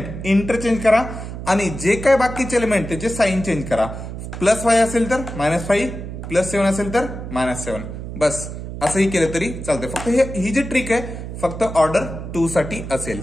इंटरचेंज करा आणि जे काय बाकीचे एलिमेंट त्याचे साइन चेंज करा. +5 असेल तर -5, +7 असेल तर -7. बस असंही केलं तरी चालतंय. फक्त ही जी ट्रिक आहे फक्त ऑर्डर 2 साठी असेल.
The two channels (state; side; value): noise; right; hum, 8 dB below the sound